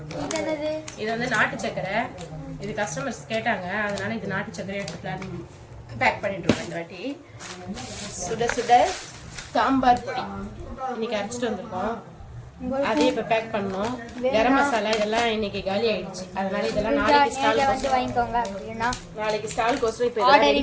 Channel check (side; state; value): both; identical; correlation 1.00